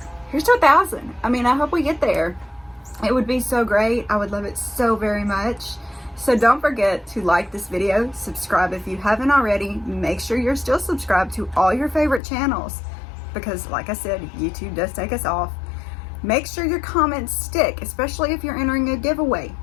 here's to 1,000. I mean, I hope we get there. It would be so great. I would love it so very much. So don't forget to like this video, subscribe if you haven't already. Make sure you're still subscribed to all your favorite channels because, like I said, YouTube does take us off. Make sure your comments stick, especially if you're entering a giveaway.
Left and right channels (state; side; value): drops out; right; at 12.2 s